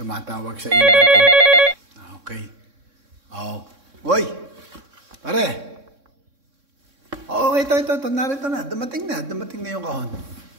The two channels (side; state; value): left; late; 3.6 ms